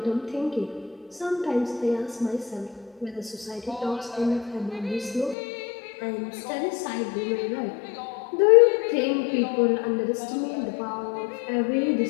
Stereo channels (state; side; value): drops out; right; at 5.4 s